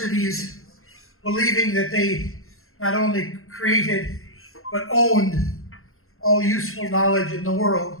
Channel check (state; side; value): late; right; 0.62 ms